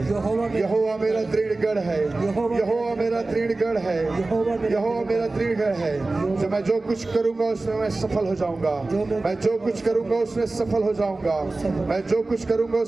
यहोवा मेरा दृढ़ गढ़ है. यहोवा मेरा दृढ़ गढ़ है. यहोवा मेरा दृढ़ गढ़ है. जो मैं जो कुछ करूंगा उसमें मैं सफल हो जाऊंगा. मैं जो कुछ करूंगा उसमें सफल हो जाऊंगा. मैं जो कुछ करूंगा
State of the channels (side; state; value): left; quieter; 3.2 dB